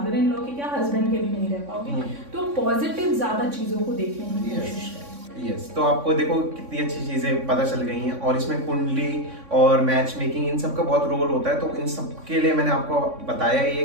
इन लॉ के क्या हस्बैंड के भी नहीं रह पाओगे। तो पॉजिटिव ज्यादा चीजों को देखने की कोशिश करें। यस, तो आपको देखो कितनी अच्छी चीजें पता चल गई हैं, और इसमें कुंडली और मैच मेकिंग इन सब का बहुत रोल होता है। तो इन सब के लिए मैंने आपको बताया ही है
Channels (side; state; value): left; late; 3.6 ms